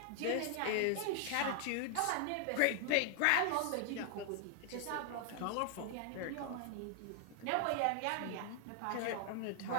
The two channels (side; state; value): both; different; correlation 0.00